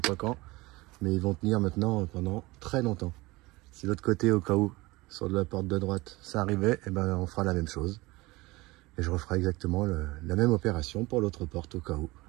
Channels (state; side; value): quieter; left; 21.6 dB